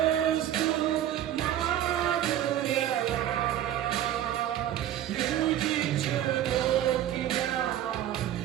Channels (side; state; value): left; quieter; 11.7 dB